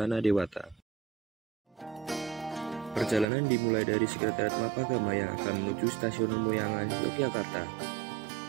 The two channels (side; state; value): left; drops out; at 3.2 s